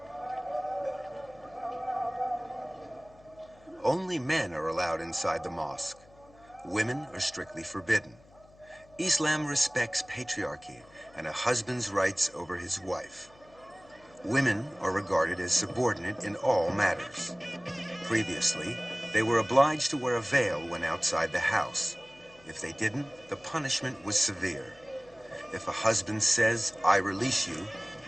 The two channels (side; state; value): left; noise; hum, 27 dB below the sound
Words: Only men are allowed inside the mosque. Women are strictly forbidden. Islam respects patriarchy and a husband's rights over his wife. Women are regarded as subordinate in all matters. Previously, they were obliged to wear a veil when outside the house. If they didn't, the punishment was severe. If a husband says, "I release you,"